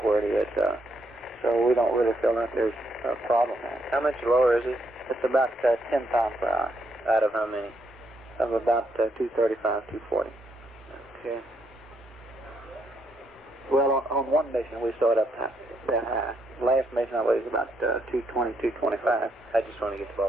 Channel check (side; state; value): both; normal; correlation 0.75